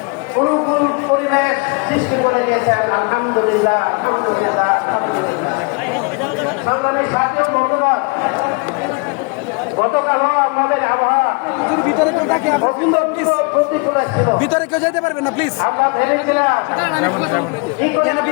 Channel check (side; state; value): right; quieter; 31.4 dB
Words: অনুকূল পরিবেশ সৃষ্টি করে দিয়েছেন। আলহামদুলিল্লাহ, আলহামদুলিল্লাহ, আলহামদুলিল্লাহ। সংগ্রামী সাথী ও বন্ধুগণ, গতকালও আমাদের আবহাওয়া প্রতিকূল ছিল। ভিতরে কেউ যেতে পারবে না প্লিজ। আমরা ভেবেছিলাম